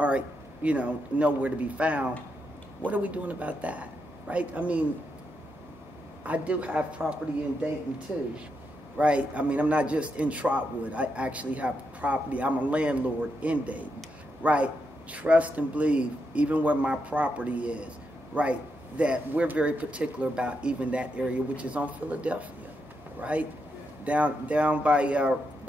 nowhere to be found, what are we doing about that, right? I mean, I do have property in Dayton too, right? I mean, I'm not just in Trotwood. I actually have property. I'm a landlord in Dayton, right? Trust and believe, even where my property is, right, that we're very particular about even that area, which is on Philadelphia, right? Down by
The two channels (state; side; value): normal; both; correlation 0.82